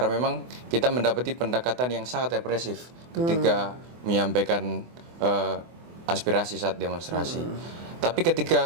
memang kita mendapati pendekatan yang sangat represif ketika menyampaikan aspirasi saat demonstrasi. Tapi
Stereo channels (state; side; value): late; left; 24 ms